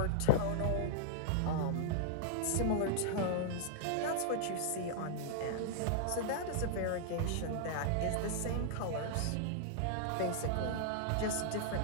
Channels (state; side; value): different; both; correlation -0.01